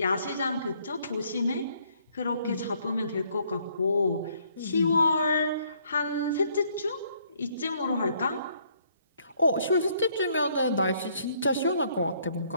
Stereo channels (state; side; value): inverted; both; correlation -0.66